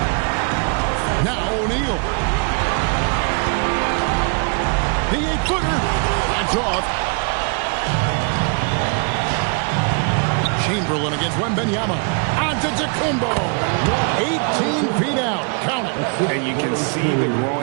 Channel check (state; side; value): quieter; left; 38.0 dB